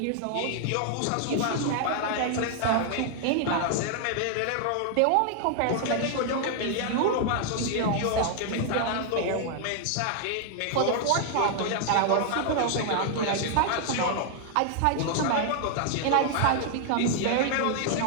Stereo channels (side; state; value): both; different; correlation 0.00